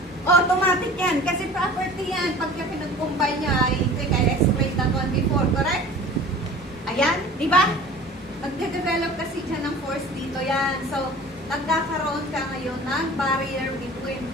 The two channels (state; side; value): normal; both; correlation 0.43